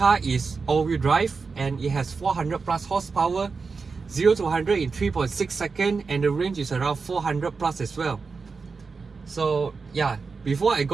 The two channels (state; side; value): quieter; left; 4.7 dB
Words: is all-wheel drive and it has 400 plus horsepower, 0 to 100 in 3.6 seconds, and the range is around 400 plus as well. So yeah, before I